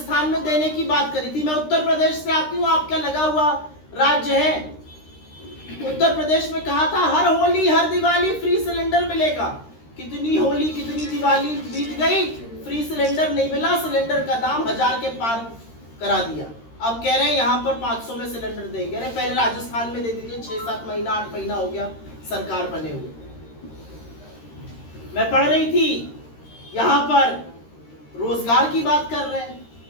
में देने की बात करी थी। मैं उत्तर प्रदेश से आती हूँ, आपका लगा हुआ राज्य है। उत्तर प्रदेश में कहा था हर होली हर दिवाली फ्री सिलेंडर मिलेगा। कितनी होली कितनी दिवाली बीत गई, फ्री सिलेंडर नहीं मिला, सिलेंडर का दाम 1000 के पार करा दिया। अब कह रहे हैं यहाँ पर 500 में सिलेंडर देंगे। अरे पहले राजस्थान में दे दीजिए, 6-7 महीना 8 महीना हो गया सरकार बने हुए। मैं पढ़ रही थी यहाँ पर रोजगार की बात कर रहे हैं।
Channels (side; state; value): right; late; 13 ms